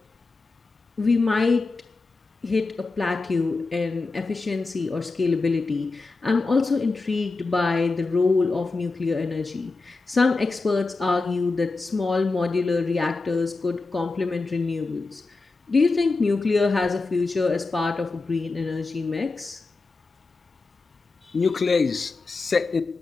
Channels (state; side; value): quieter; right; 3.8 dB